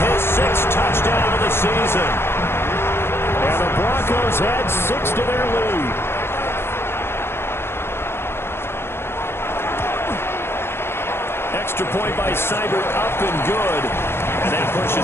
His 6th touchdown of the season. And the Broncos had 6 to their lead. Extra point by Seibert, up and good. And that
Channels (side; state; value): right; late; 0.11 ms